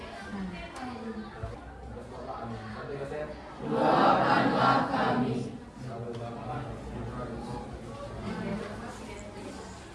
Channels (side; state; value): both; identical; correlation 1.00